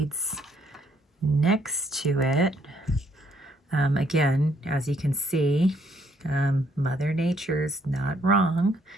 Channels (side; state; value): both; normal; correlation 0.69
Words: next to it, again, as you can see, Mother Nature's not wrong.